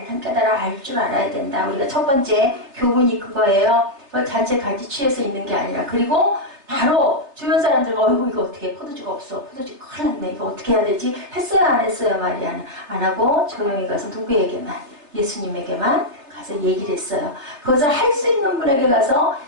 깨달아 알 줄 알아야 된다. 우리가 첫 번째 교훈이 그거예요. 잔치에 같이 취해서 있는 게 아니라. 그리고 바로 주변 사람들과 어이구 이거 어떻게 포도주가 없어. 포도주 큰일 났네. 이거 어떻게 해야 되지? 했어요 안 했어요? 마리아는 안 하고 조용히 가서 누구에게만? 예수님에게만 가서 얘기를 했어요. 그것을 할 수 있는 분에게 가서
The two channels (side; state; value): left; late; 3.3 ms